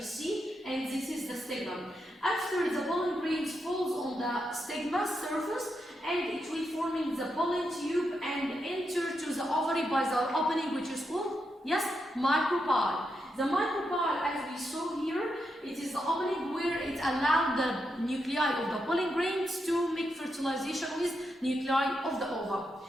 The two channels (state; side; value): normal; both; correlation 0.84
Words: see, and this is the stigma. After the pollen grains falls on the stigma surface, and it will forming the pollen tube and enter to the ovary by the opening, which is called, yes, micropyle. The micropyle, as we saw here, it is the opening where it allows the nuclei of the pollen grains to make fertilization with nuclei of the ova.